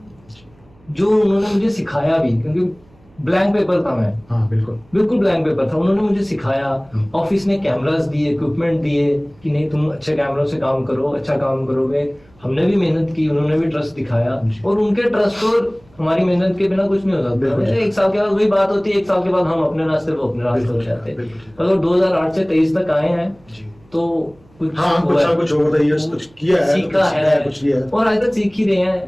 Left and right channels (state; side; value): noise; right; hum, 30 dB below the sound